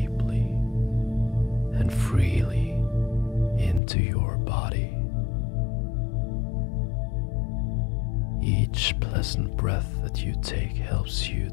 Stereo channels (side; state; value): right; drops out; at 3.8 s